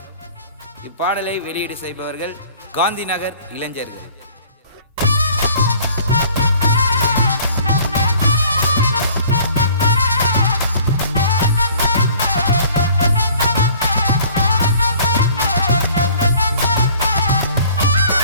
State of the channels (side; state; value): both; inverted; correlation -0.52